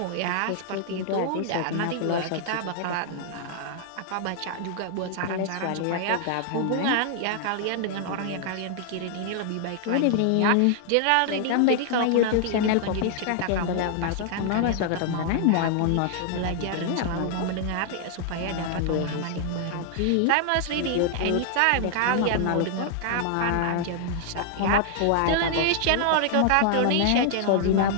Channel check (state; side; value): different; both; correlation -0.01